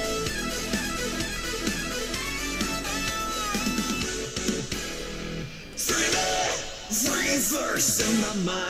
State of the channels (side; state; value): both; identical; correlation 1.00